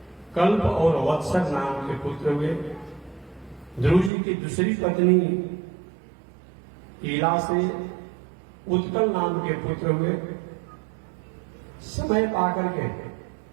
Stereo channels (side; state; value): left; drops out; at 4.1 s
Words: कल्प और वत्सर नाम के पुत्र हुए। ध्रुव जी की दूसरी पत्नी ईला से उत्कल नाम के पुत्र हुए। समय पाकर के